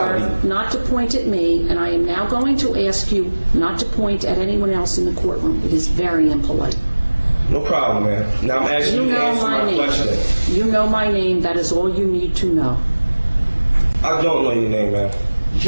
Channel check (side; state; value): both; inverted; correlation -1.00